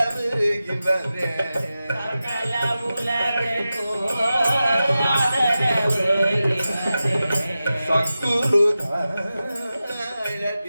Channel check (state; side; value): inverted; both; correlation -0.93